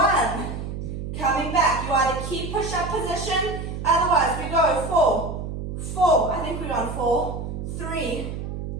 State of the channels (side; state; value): right; noise; hum, 6 dB below the sound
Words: Coming back. You either keep push-up position. Otherwise, we go 4. I think we're on 4. 3,